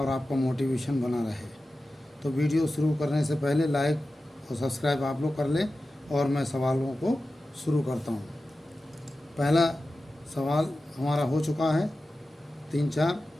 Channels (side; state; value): both; normal; correlation 0.94